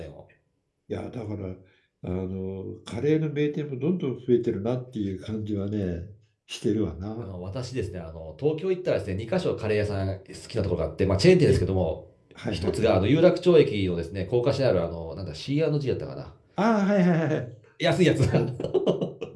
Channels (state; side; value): identical; both; correlation 1.00